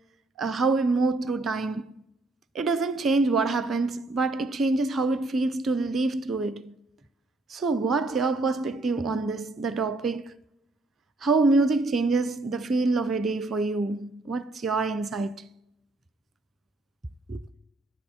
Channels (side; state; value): left; quieter; 3.0 dB